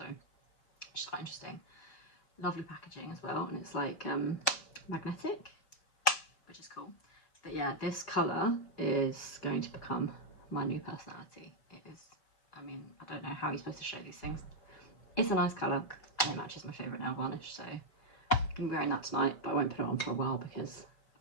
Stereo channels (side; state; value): right; late; 4.7 ms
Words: it's quite interesting. Lovely packaging as well, and it's like magnetic, which is cool. But yeah, this colour is going to become my new personality. It is, I mean, I don't know how you're supposed to show these things. It's a nice colour, and it matches my favourite nail varnish, so I'm going to be wearing that tonight, but I won't put it on for a while because